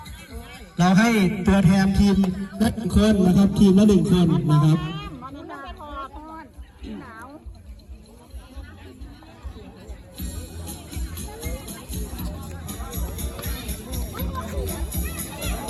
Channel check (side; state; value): both; identical; correlation 1.00